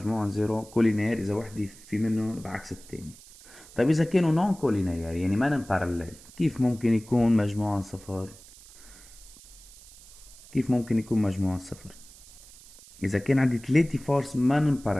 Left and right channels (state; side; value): noise; right; hiss, 21 dB below the sound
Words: 0 كولينير إذا وحدة في منهم بعكس التاني. طيب إذا كانوا نون كولينير يعني ما باراليل كيف ممكن يكون مجموعهم صفر؟ كيف ممكن يكون مجموعهم صفر؟ إذا كان عندي 3 فورس ما